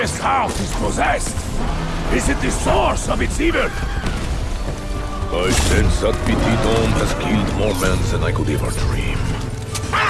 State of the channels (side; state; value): both; identical; correlation 1.00